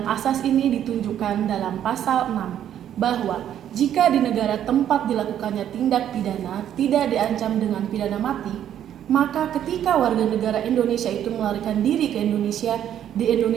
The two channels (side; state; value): left; quieter; 10.4 dB